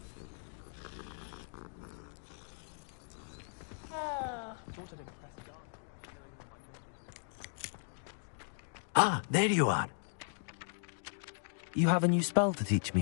Thought I'd impress Garlic by showing her my Mimbleless Nimble pony. Ah, there you are. You have a new spell to teach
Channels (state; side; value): silent; right; digital silence